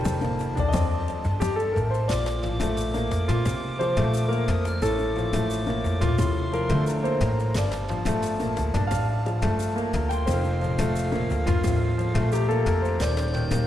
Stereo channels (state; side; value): normal; both; correlation 0.88